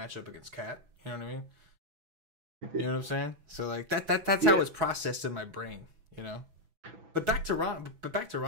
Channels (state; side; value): late; left; 6.0 ms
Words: against Cat. You know what I mean? You know what I'm saying? So like that's how it's processed in my brain, you know? But back to Rondo.